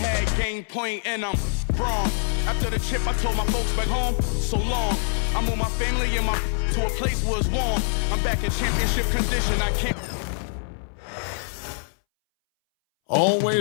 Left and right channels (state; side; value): silent; right; 61 dB below the other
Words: game point and I'm wrong. After the chip, I told my folks back home, so long. I moved my family and my to a place where it's warm. I'm back in championship condition, I can't.